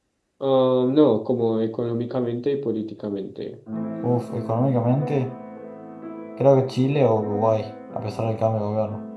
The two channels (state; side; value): identical; both; correlation 1.00